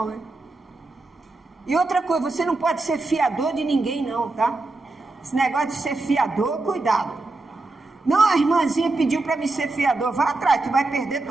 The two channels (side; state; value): left; quieter; 3.2 dB